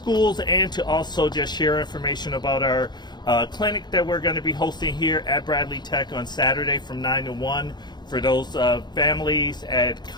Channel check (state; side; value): late; right; 0.21 ms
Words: and to also just share information about our clinic that we're going to be hosting here at Bradley Tech on Saturday from 9 to 1 for those families at